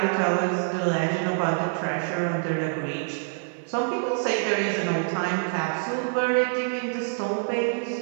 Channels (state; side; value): silent; left; 57 dB below the other